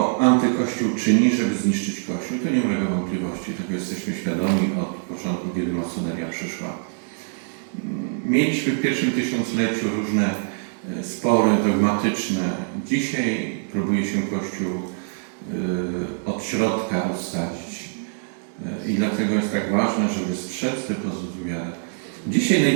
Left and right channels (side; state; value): left; silent; digital silence